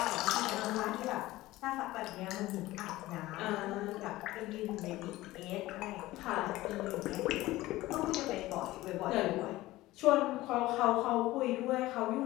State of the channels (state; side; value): quieter; right; 17.5 dB